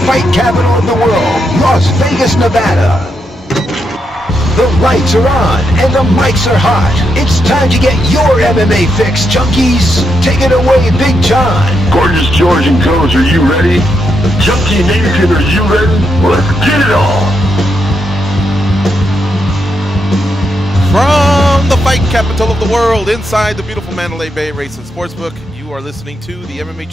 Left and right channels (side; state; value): both; normal; correlation 0.81